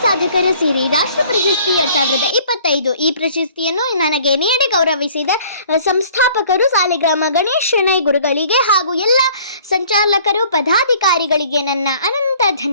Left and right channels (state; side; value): inverted; both; correlation -0.54